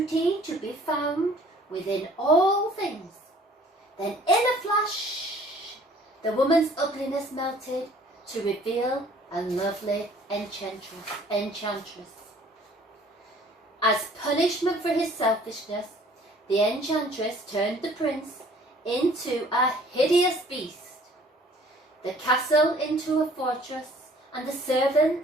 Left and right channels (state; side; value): normal; both; correlation 0.54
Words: to be found within all things." Then in a flash, the woman's ugliness melted to reveal a lovely enchantress. As punishment for his selfishness, the enchantress turned the prince into a hideous beast, the castle into a fortress, and the